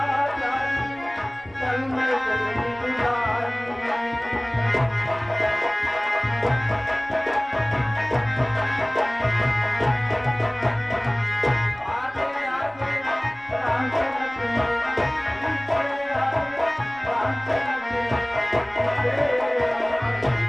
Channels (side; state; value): right; noise; rumble, 27 dB below the sound